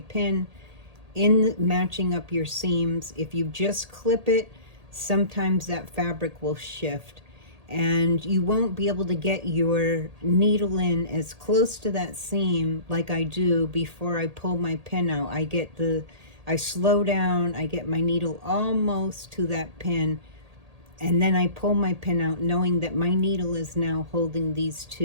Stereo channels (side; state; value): left; late; 1.8 ms